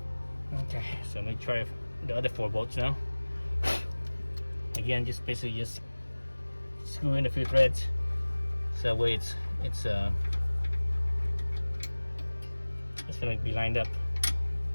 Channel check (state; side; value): inverted; both; correlation -1.00